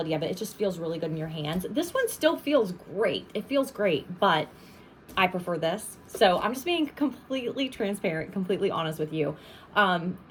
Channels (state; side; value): identical; both; correlation 1.00